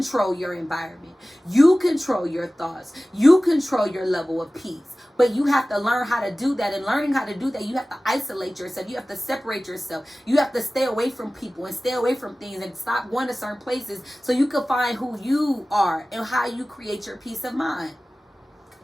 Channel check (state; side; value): normal; both; correlation 0.97